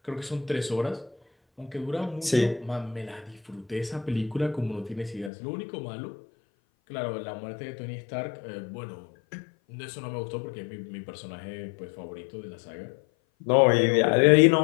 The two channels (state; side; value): drops out; right; at 5.3 s